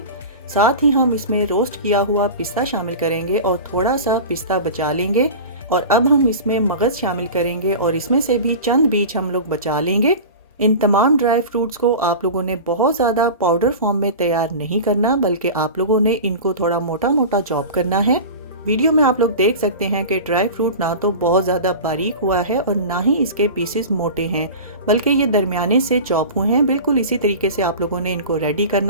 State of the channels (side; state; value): both; inverted; correlation -0.32